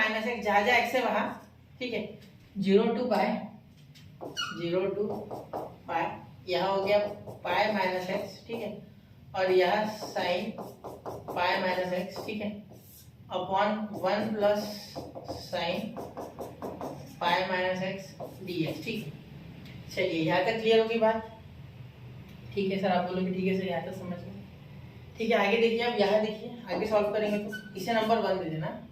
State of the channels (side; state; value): both; identical; correlation 1.00